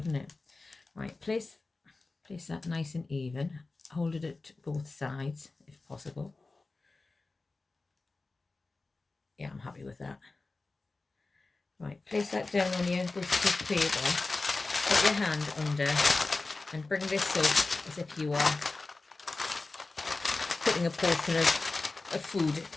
it? Right, place that nice and even. Hold it at both sides if possible. Yeah, I'm happy with that. Right, place that down on your greaseproof paper. Put your hand under and bring this up as if you are putting a portion of food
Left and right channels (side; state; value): right; quieter; 3.5 dB